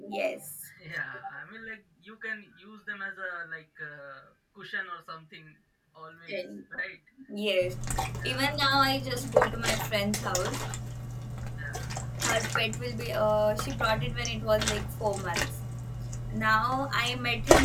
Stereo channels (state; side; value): identical; both; correlation 1.00